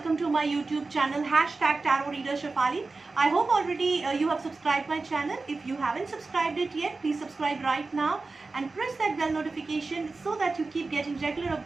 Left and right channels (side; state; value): left; quieter; 3.7 dB